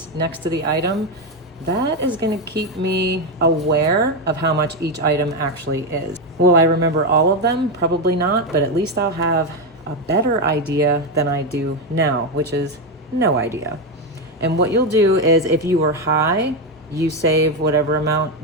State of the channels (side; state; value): both; normal; correlation 0.09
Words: next to the item, that is gonna keep me aware of how much each item actually is. Will I remember all of them? Probably not, but at least I'll have a better idea than I do now, which is no idea. And what you'll do is if you were high, you save whatever amount